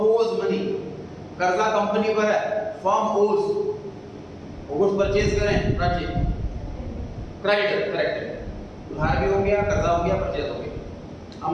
owes money, कर्जा कंपनी पर है, firm owes, गुड्स परचेज करें, परचेज क्रेडिटर, करेक्ट है। उधार भी हो गया, कर्जा हो गया, परचेज हो गया।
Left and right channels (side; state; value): both; identical; correlation 1.00